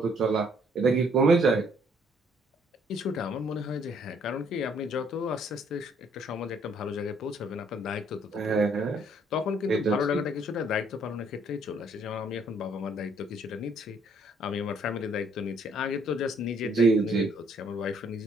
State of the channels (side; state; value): both; normal; correlation 0.65